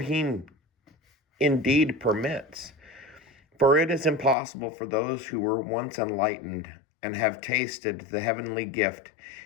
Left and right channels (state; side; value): drops out; right; at 4.4 s